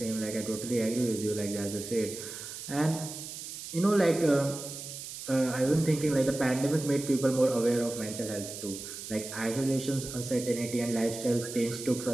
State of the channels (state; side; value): noise; right; hiss, 10 dB below the sound